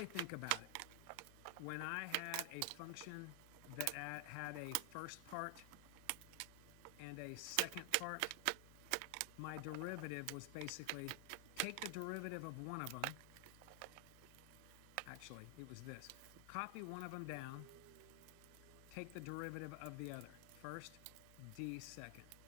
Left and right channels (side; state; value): both; different; correlation 0.00